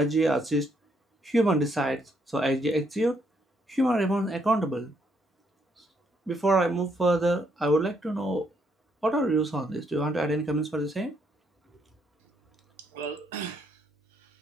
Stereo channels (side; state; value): both; normal; correlation 0.73